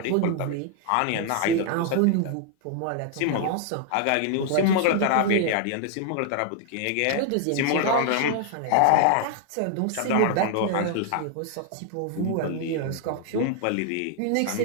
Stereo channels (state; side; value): different; both; correlation 0.00